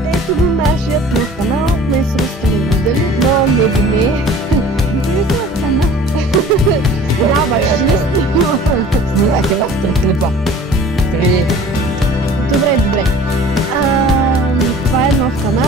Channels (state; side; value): normal; both; correlation 0.46